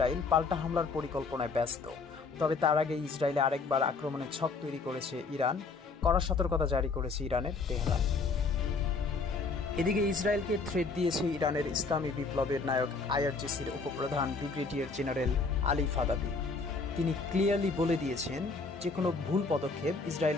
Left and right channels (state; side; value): quieter; right; 4.3 dB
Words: পাল্টা হামলার পরিকল্পনায় ব্যস্ত। তবে তার আগে ইসরায়েলে আরেকবার আক্রমণের ছক তৈরি করেছে ইরান। কড়া সতর্কতা জারি করেছে ইরানের তেহরান। এদিকে ইসরায়েলকে থ্রেট দিয়েছে ইরানের ইসলামী বিপ্লবের নায়ক আইআরজিসির উপপ্রধান ব্রিগেডিয়ার জেনারেল আলী ফাদাবি। তিনি ক্লিয়ারলি বলে দিয়েছেন যে কোনো ভুল পদক্ষেপ